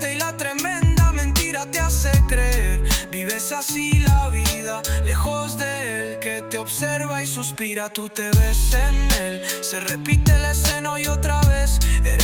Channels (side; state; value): both; identical; correlation 1.00